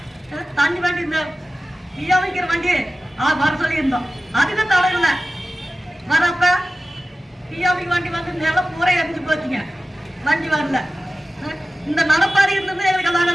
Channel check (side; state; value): both; normal; correlation 0.95